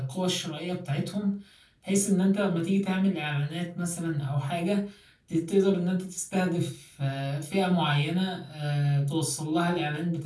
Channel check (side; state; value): both; identical; correlation 1.00